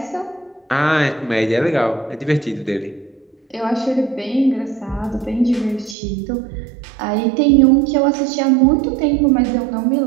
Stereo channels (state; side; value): drops out; left; at 6.0 s